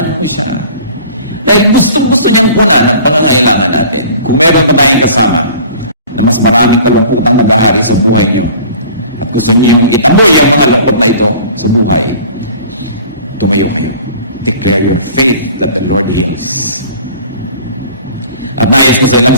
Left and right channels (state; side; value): inverted; both; correlation -0.46